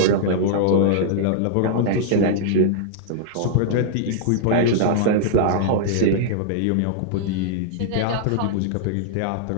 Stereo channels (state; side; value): different; both; correlation -0.01